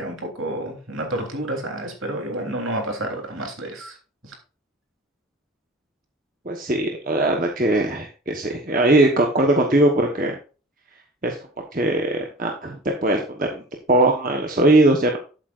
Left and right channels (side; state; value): both; normal; correlation 0.38